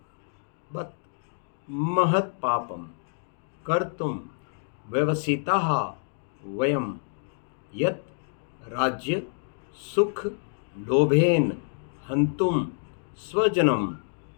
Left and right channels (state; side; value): silent; right; digital silence